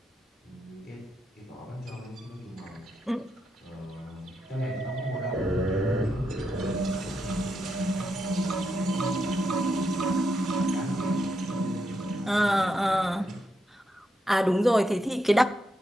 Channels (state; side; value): normal; both; correlation 0.83